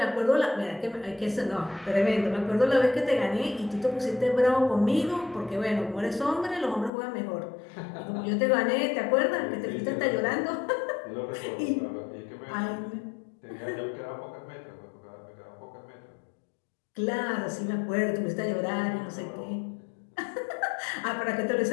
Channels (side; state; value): right; drops out; at 6.9 s